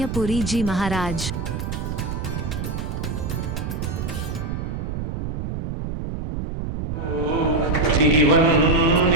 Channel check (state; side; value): noise; right; rumble, 4 dB below the sound